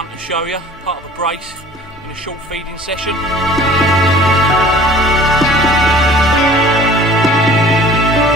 to show you, part of a brace in a short feeding session.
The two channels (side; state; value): both; normal; correlation 0.48